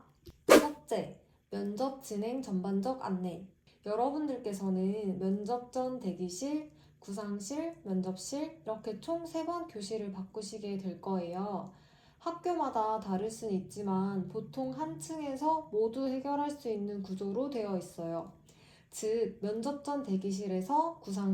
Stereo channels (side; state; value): both; identical; correlation 1.00